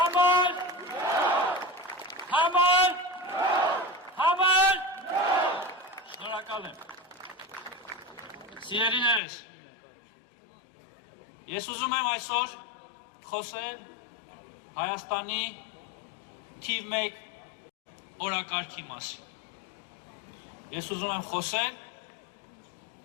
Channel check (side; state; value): right; drops out; at 9.2 s